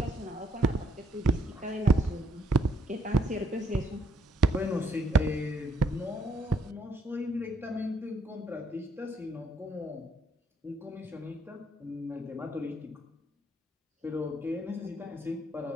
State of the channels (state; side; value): normal; both; correlation 0.70